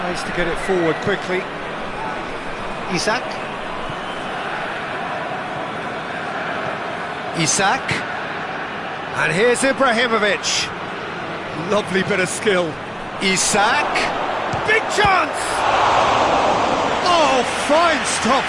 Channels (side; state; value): both; identical; correlation 1.00